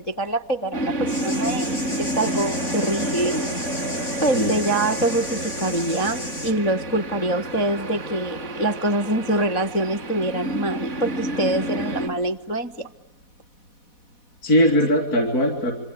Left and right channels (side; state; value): right; late; 4.1 ms